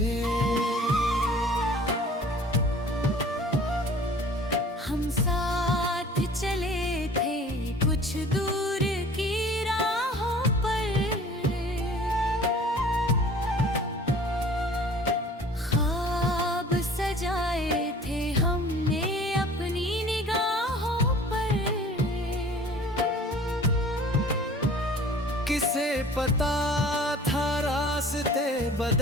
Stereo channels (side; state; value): both; normal; correlation 0.47